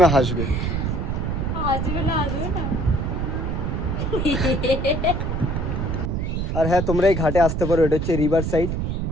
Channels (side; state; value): right; noise; rumble, 1 dB below the sound